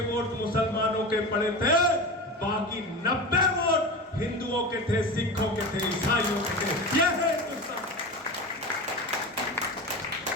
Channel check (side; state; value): both; normal; correlation 0.27